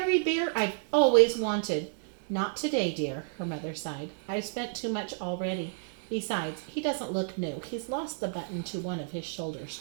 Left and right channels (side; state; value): left; silent; 57 dB below the other